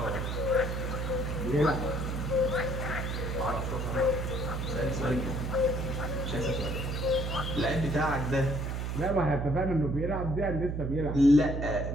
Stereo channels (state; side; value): noise; right; hum, 2 dB below the sound